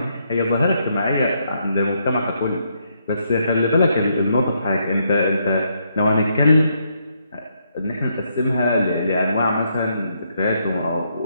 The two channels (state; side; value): inverted; both; correlation -0.76